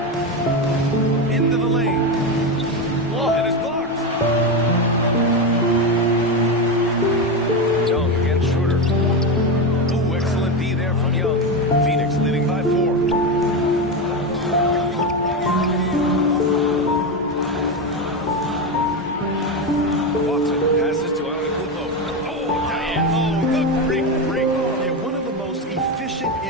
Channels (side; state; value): both; normal; correlation 0.14